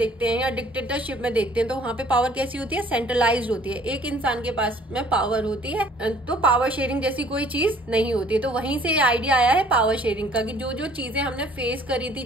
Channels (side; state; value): both; normal; correlation 0.56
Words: हैं या डिक्टेटरशिप में देखते हैं तो वहां पे पावर कैसी होती है? सेंट्रलाइज्ड होती है, एक इंसान के पास में पावर होती है, तो पावर शेयरिंग जैसी कोई चीज नहीं होती है। तो वहीं से ये आइडिया आया है पावर शेयरिंग का कि जो जो चीजें हमने फेस करी थी